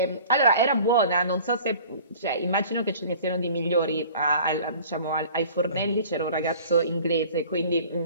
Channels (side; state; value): both; inverted; correlation -0.46